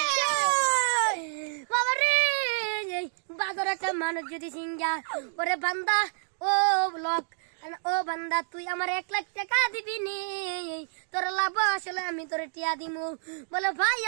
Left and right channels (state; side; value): silent; left; digital silence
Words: বাবা রে বাজার একটা মানুষ যদি সিঙ্গা, ওরে বান্দা ও লোক, ও বান্দা তুই আমার 1 লাখ টাকা দিবি নি, তোর লাভ আসলে আমি তোরে টিয়া দিমু। বলে ভাই